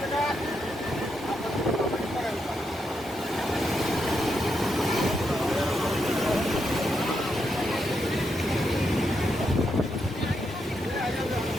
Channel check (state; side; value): normal; both; correlation 0.82